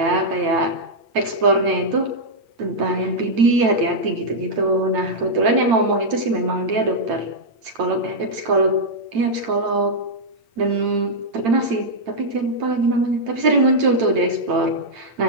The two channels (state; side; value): late; left; 8.9 ms